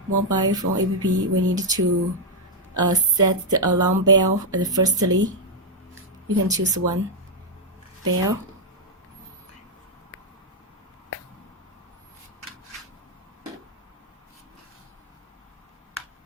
mobile phone app, we need to set the alarm bell firstly. You can choose one bell.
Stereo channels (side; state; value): both; normal; correlation -0.02